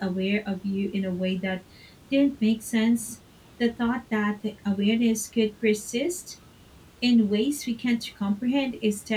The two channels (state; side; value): identical; both; correlation 1.00